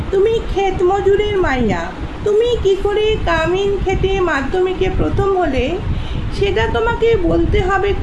তুমি ক্ষেত মজুরের মাইয়া, তুমি কি করে কামিন খেটে মাধ্যমিকে প্রথম হলে সেটা তোমাকে বলতে হবে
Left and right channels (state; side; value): identical; both; correlation 1.00